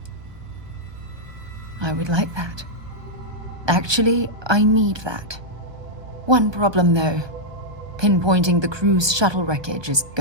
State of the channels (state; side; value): late; left; 1.2 ms